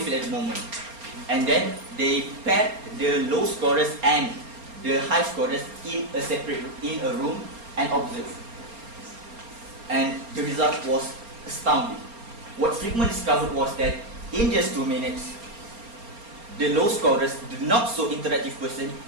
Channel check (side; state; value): left; late; 4.3 ms